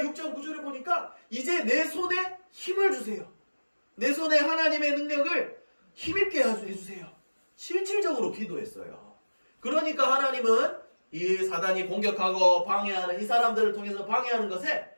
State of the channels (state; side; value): inverted; both; correlation -1.00